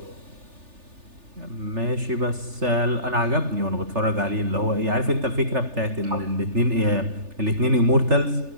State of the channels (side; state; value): left; late; 3.4 ms